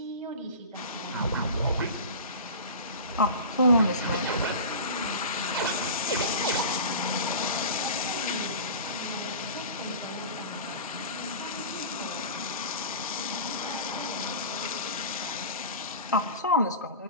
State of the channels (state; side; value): inverted; both; correlation -0.33